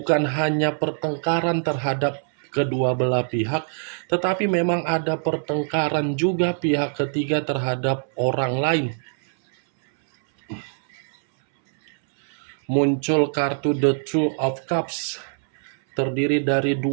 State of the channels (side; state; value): left; silent; 62 dB below the other